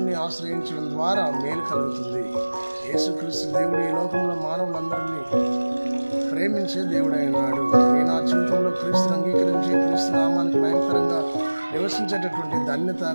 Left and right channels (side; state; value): both; inverted; correlation -1.00